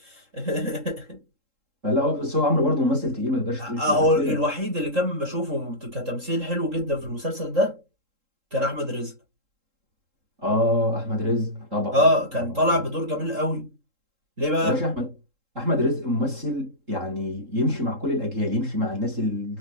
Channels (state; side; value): late; left; 3.7 ms